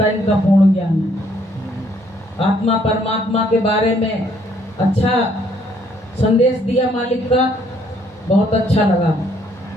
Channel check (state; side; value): normal; both; correlation 0.67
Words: है इनका पूर्ण ज्ञान है। आत्मा परमात्मा के बारे में अच्छा संदेश दिया मालिक का, बहुत अच्छा लगा।